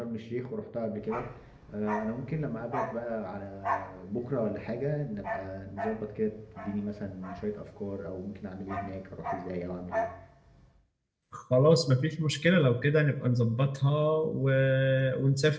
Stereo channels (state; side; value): identical; both; correlation 1.00